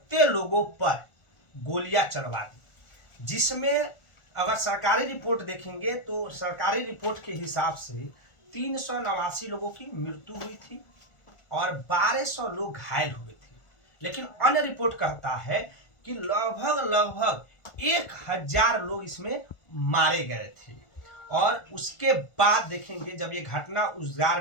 लोगों पर गोलियां चलवा दी, जिसमें अगर सरकारी रिपोर्ट देखेंगे तो सरकारी रिपोर्ट के हिसाब से 389 लोगों की मृत्यु हुई थी और 1200 लोग घायल हुए थे। लेकिन अन्य रिपोर्ट कहता है कि लगभग 1000 लोग इसमें मारे गए थे। और उसके बाद देखेंगे जब ये घटना उजागर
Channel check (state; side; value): late; right; 1.4 ms